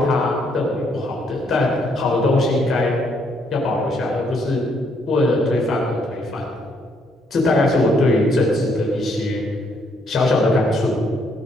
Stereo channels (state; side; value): normal; both; correlation 0.71